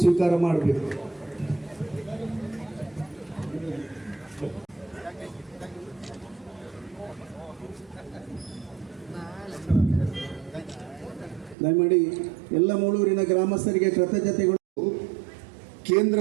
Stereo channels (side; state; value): left; drops out; at 11.6 s